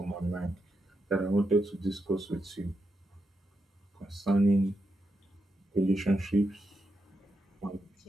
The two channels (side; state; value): both; normal; correlation 0.85